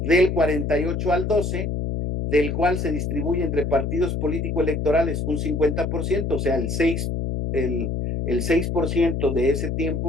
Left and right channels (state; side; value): noise; left; hum, 1 dB below the sound